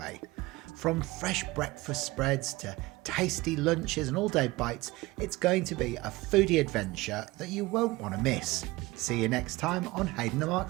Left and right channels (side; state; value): left; quieter; 20.8 dB